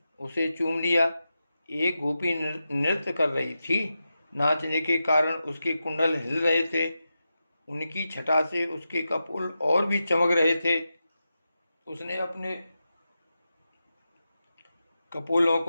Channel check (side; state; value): both; inverted; correlation -0.90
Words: उसे चूम लिया। एक गोपी नृत्य कर रही थी, नाचने के कारण उसके कुंडल हिल रहे थे, उनकी छटा से उसके कपोल और भी चमक रहे थे। उसने अपने कपोलों